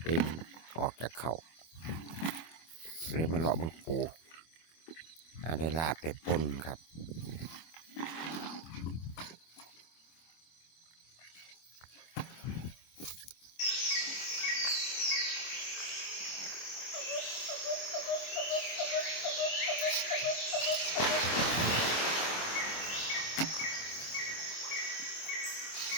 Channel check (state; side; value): late; right; 25 ms